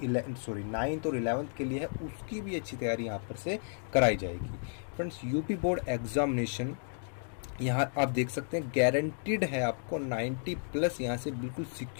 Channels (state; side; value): silent; right; digital silence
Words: और 11th के लिए है उसकी भी अच्छी तैयारी यहाँ पर से कराई जाएगी। फ्रेंड्स, यूपी बोर्ड एग्जामिनेशन यहाँ आप देख सकते हैं गारंटीड है, आपको 90 प्लस यहाँ से बिल्कुल